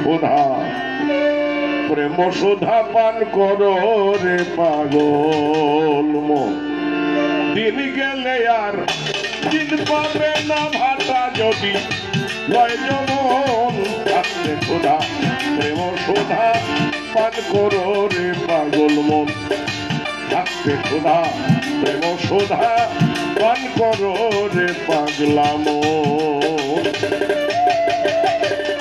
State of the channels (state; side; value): noise; left; hum, 27 dB below the sound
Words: প্রেম সুধা পান করো রে পাগল মন দিন গেলে আর দিন পাবে না ভাতা যদি লয় যমন থাকতে ক্ষুধা প্রেম সুধা পান করো রে পাগল মন থাকতে ক্ষুধা প্রেম সুধা পান করো রে পাগলা মন